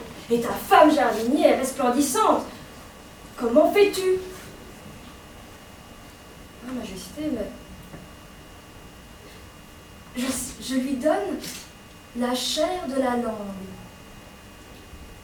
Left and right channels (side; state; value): both; identical; correlation 1.00